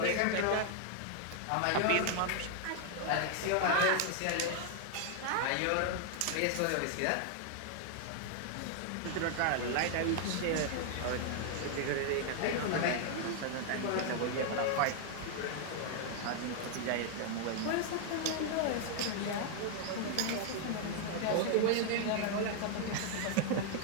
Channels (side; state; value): both; different; correlation 0.00